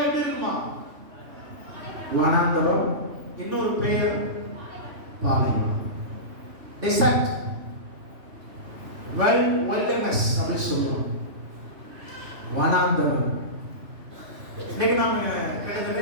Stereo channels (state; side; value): late; left; 3.1 ms